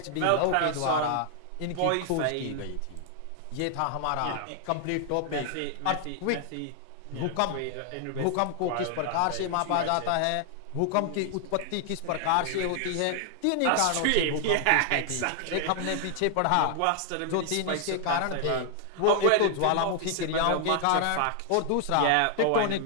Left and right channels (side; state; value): both; different; correlation 0.00